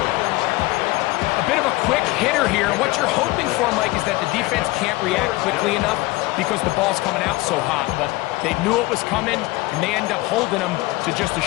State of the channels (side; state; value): right; quieter; 20.5 dB